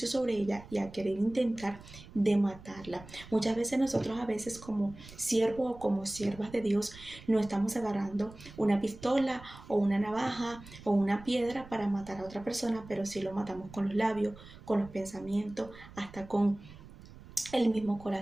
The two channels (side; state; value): right; noise; rumble, 18 dB below the sound